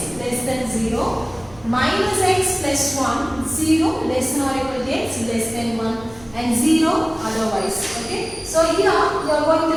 less than 0 minus x plus 1 0 less than or equal to x less than 1 and 0 otherwise. Okay. So here you are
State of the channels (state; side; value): noise; right; rumble, 24 dB below the sound